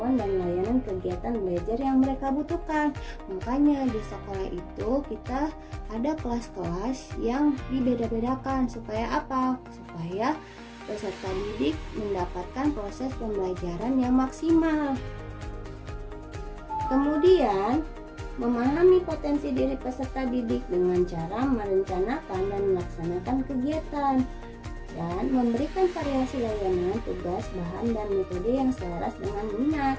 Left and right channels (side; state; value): both; identical; correlation 1.00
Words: dan layanan kegiatan belajar yang mereka butuhkan. Makanya di sekolah itu kita ada kelas-kelas yang dibeda-bedakan. Supaya apa? Supaya peserta didik mendapatkan proses pembelajaran yang maksimal. Kemudian, memahami potensi diri peserta didik dengan cara merencanakan dan melaksanakan kegiatan dan memberikan variasi layanan, tugas, bahan, dan metode yang selaras dengan minat.